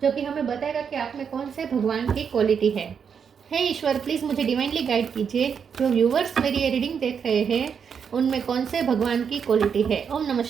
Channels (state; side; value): quieter; left; 6.9 dB